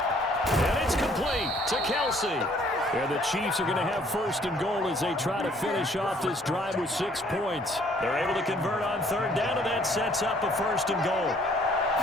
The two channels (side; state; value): both; normal; correlation 0.61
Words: And it's complete to Kelce. And the Chiefs are going to have 1st and goal as they try to finish off this drive with 6 points. They're able to convert on 3rd down, and that sets up a 1st and goal.